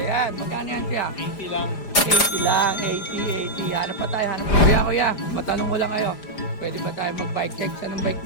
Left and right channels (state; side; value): late; right; 4.9 ms